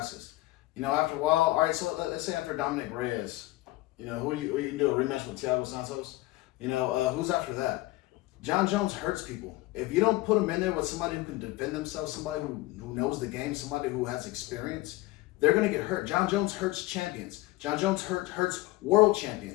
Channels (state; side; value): quieter; right; 19.1 dB